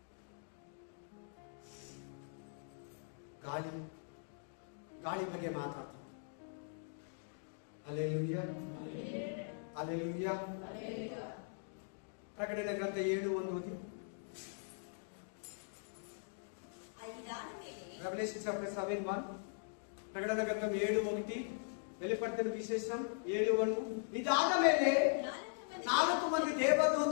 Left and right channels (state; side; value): silent; right; digital silence